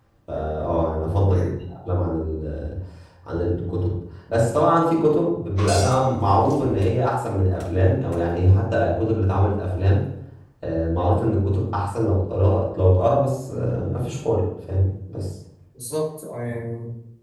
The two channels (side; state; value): both; identical; correlation 1.00